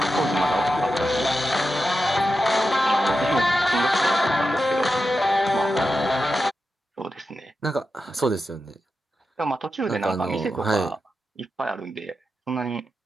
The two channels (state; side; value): normal; both; correlation 0.90